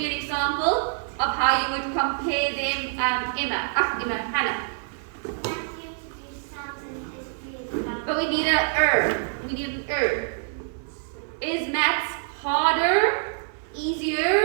an example of how you would compare them, Hannah? But we need we need an Is maths harder,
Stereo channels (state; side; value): silent; left; digital silence